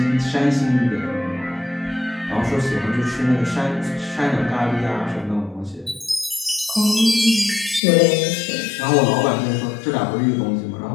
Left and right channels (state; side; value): drops out; right; at 7.8 s